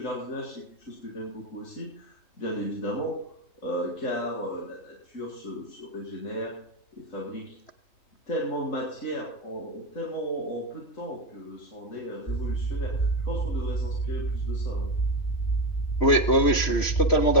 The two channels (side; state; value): right; late; 3.1 ms